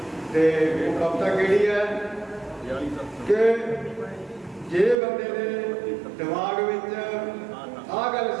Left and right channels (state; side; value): drops out; left; at 5.0 s